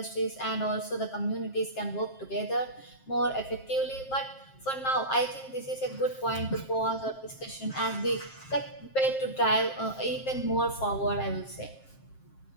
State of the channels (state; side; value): late; right; 7.5 ms